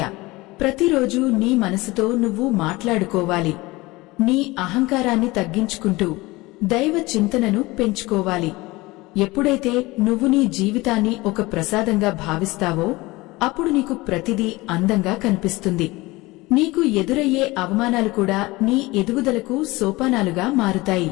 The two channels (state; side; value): quieter; right; 21.3 dB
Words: ప్రతిరోజు నీ మనసుతో నువ్వు మాట్లాడుకోవాలి. నీ అహంకారాన్ని తగ్గించుకుంటూ దైవ చింతనను పెంచుకోవాలి. ఎప్పుడైతే నువ్వు నీ జీవితాన్ని ఒక ప్రసాదంగా భావిస్తావో అప్పుడు నీకు ప్రతిదీ అందంగా కనిపిస్తుంది. నీకు ఎదురయ్యే అవమానాలు కూడా నీ ఎదుగుదలకు సోపానాలుగా మారుతాయి.